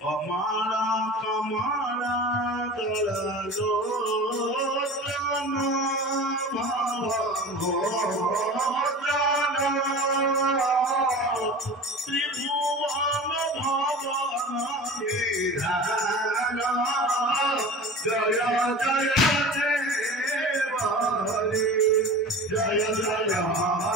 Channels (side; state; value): both; normal; correlation 0.36